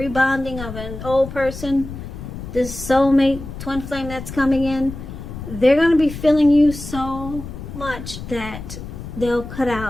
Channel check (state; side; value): noise; left; rumble, 10 dB below the sound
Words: of an old person, this soulmate, twin flame that's coming in, they're going to be feeling you so much that they'll cut